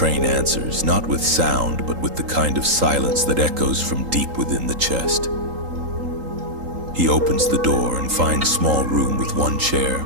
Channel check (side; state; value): left; late; 3.8 ms